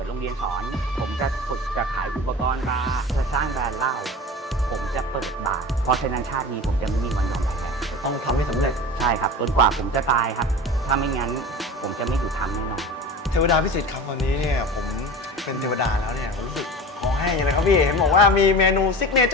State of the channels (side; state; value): both; normal; correlation 0.33